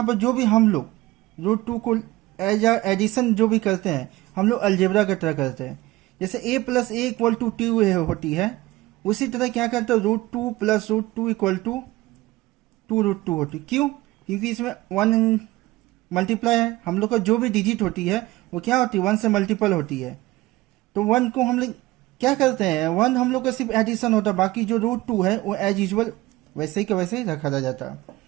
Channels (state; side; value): quieter; left; 18.6 dB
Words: पर जो भी हम लोग रूट टू को एज एडिशन जो भी करते हैं हम लोग अलजेब्रा की तरह करते हैं। जैसे a plus a equal to two होती है, उसी तरह क्या करते हैं root two plus root two equal to two root two होती है। क्यों? क्योंकि इसमें वन मल्टीप्लाई है, हम लोग का जो भी डिजिट होती है वो क्या होती है, वन से मल्टीपल होती है। तो वन को हम लोग क्या करते हैं, वन हम लोग का सिर्फ एडिशन होता है, बाकी जो रूट टू है वो एज यूजल वैसे ही का वैसे ही रखा जाता है।